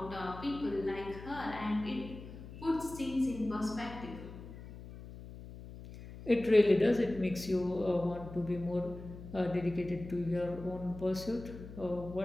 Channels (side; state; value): left; noise; hum, 13 dB below the sound